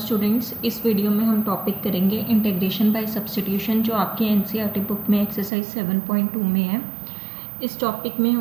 इस video में हम टॉपिक करेंगे इंटीग्रेशन बाय सब्स्टिट्यूशन जो आपकी एनसीईआरटी बुक में एक्सरसाइज 7.2 में है। इस टॉपिक में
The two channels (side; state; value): left; drops out; at 5.5 s